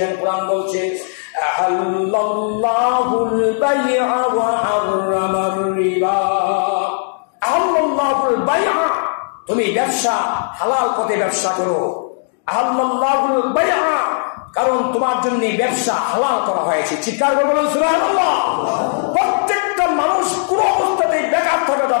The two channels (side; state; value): right; silent; digital silence